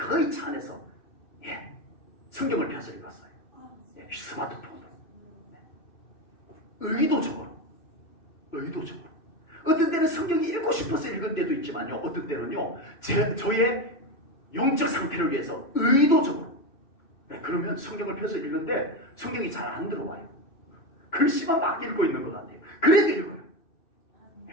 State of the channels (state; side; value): late; right; 2.6 ms